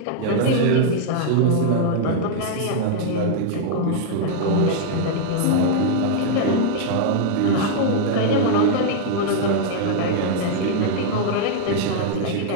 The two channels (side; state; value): both; different; correlation -0.01